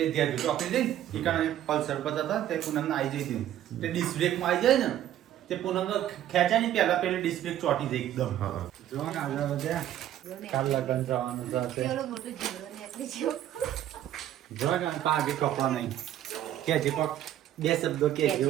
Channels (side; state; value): left; quieter; 11.9 dB